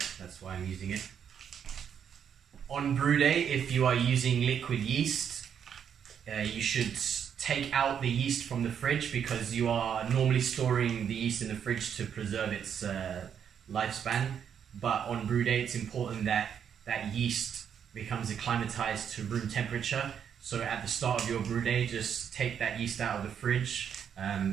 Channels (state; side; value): quieter; left; 8.1 dB